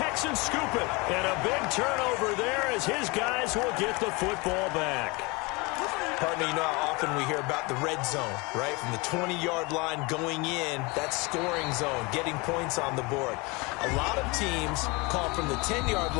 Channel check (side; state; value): right; quieter; 26.6 dB